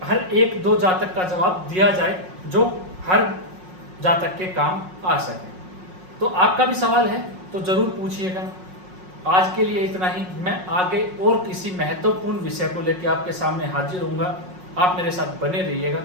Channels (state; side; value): late; left; 5.5 ms